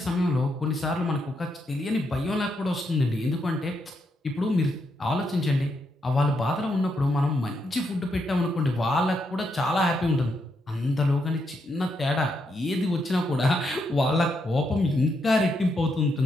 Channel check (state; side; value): normal; both; correlation 0.80